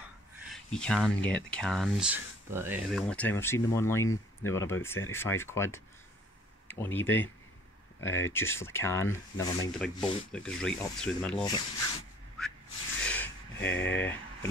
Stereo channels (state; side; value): normal; both; correlation 0.56